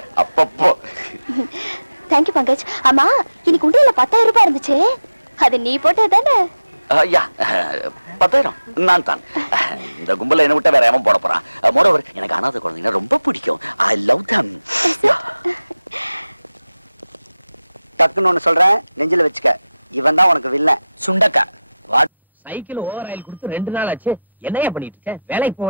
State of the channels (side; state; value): both; inverted; correlation -0.94